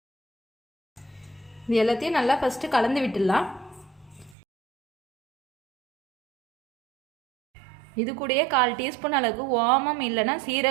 இது எல்லாத்தையும் நல்லா ஃபஸ்ட்டு கலந்து விட்டுடலாம். இது கூடயே 1/4 டீஸ்பூன் அளவுக்கு ஓமம் இல்லைன்னா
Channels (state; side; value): drops out; left; at 4.4 s